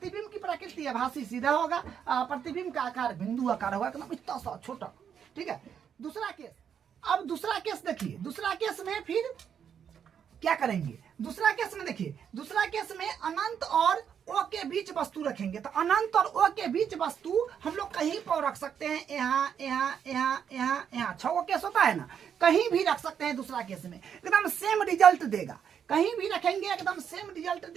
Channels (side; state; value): left; quieter; 8.1 dB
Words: की प्रकृति आभासी सीधा होगा, प्रतिबिंब का आकार बिंदु आकार होगा, मतलब इतना सा छोटा, ठीक है। दूसरा केस, अब दूसरा केस देखिए, दूसरा केस में फिर क्या करेंगे, दूसरा केस में देखिए, दूसरा केस में अनंत और ओ के बीच वस्तु रखेंगे। तो अनंत और ओ के बीच वस्तु हम लोग कहीं पर रख सकते हैं, यहाँ यहाँ यहाँ यहाँ यहाँ, 6 केस होता है ना, कहीं भी रख सकते हैं। दूसरा केस में एकदम सेम रिजल्ट देगा, कहीं भी रखेंगे एकदम सेम रिजल्ट